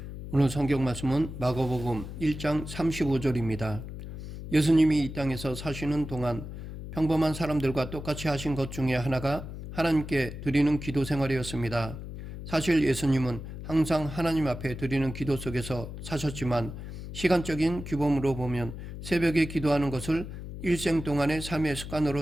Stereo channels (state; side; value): noise; left; hum, 10 dB below the sound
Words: 오늘 성경 말씀은 마가복음 1장 35절입니다. 예수님이 이 땅에서 사시는 동안 평범한 사람들과 똑같이 하신 것 중에 하나가 하나님께 드리는 기도 생활이었습니다. 사실 예수님은 항상 하나님 앞에 드리는 기도 속에서 사셨지만 시간적인 규범으로 보면 새벽에 기도하는 것을 일생 동안의 삶의